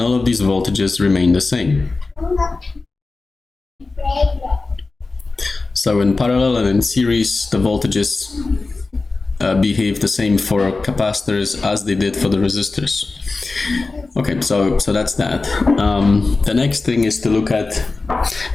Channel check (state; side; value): quieter; right; 3.7 dB